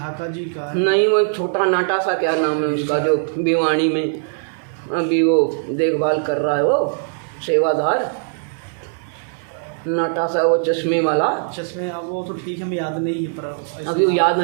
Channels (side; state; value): left; silent; 62 dB below the other